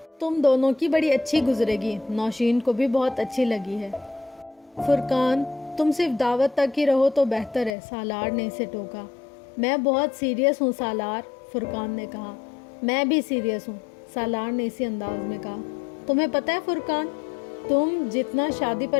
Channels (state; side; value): drops out; right; at 7.8 s